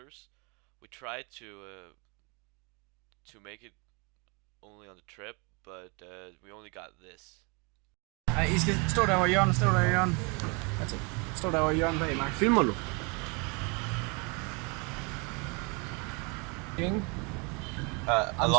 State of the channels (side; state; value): left; quieter; 31.3 dB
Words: We tried to make it only on the trip, but we only got this. Nej, I skal stå der over hjørnet, stå der i hjørnet. That's it. Stå der over hjørnet bag mig. Filmer du? I'm